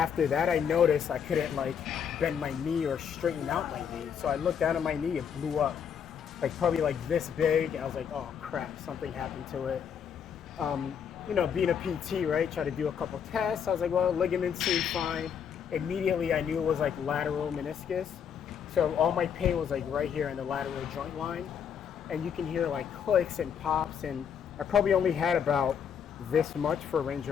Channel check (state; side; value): quieter; right; 7.7 dB